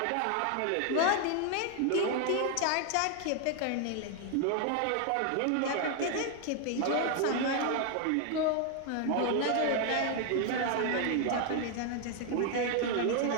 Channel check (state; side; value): different; both; correlation 0.00